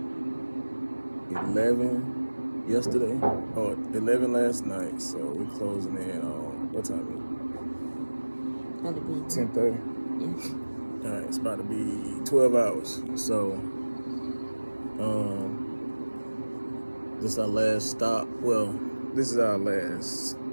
11 yesterday, or 11 last night. So we're closing in on, what time is That'd be it? 10:30. Yeah. All right, it's about to be 12 hours. So, this is our last stop. Well, this is our last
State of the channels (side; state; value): both; inverted; correlation -1.00